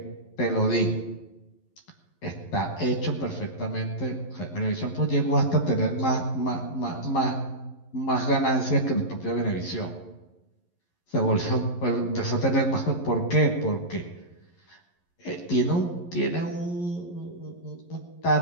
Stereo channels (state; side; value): late; right; 11 ms